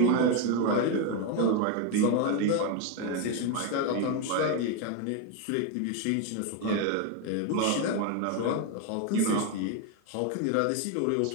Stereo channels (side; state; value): both; different; correlation 0.02